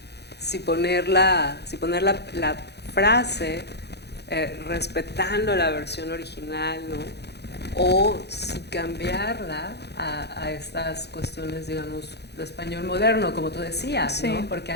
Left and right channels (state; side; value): late; right; 0.48 ms